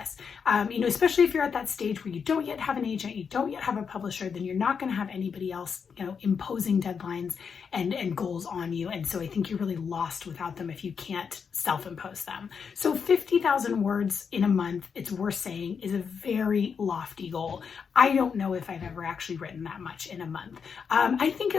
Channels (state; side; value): quieter; right; 6.3 dB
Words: Especially if you're at that stage where you don't yet have an agent, you don't yet have a publisher, then you're not going to have anybody else, imposing deadlines and goals on you. And so I think you're really lost without them if you can't self-impose them. So 50,000 words in a month, it's worth saying, is a very lofty goal. I don't know if I've ever actually written that much in a month. I think